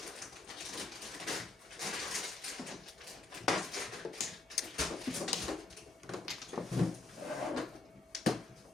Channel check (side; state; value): right; quieter; 3.4 dB